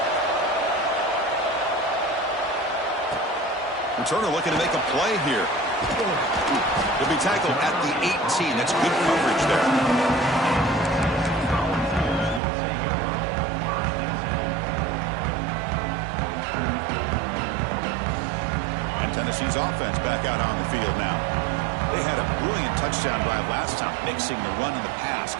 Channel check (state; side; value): drops out; left; at 12.4 s